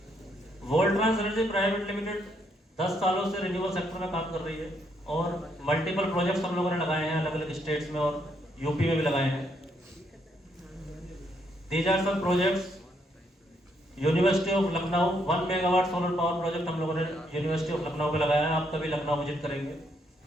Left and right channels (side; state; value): both; normal; correlation 0.74